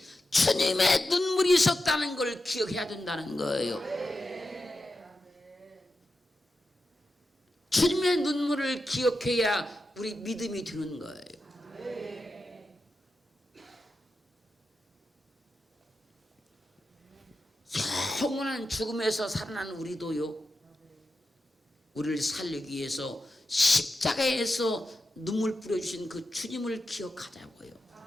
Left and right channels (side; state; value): both; normal; correlation 0.90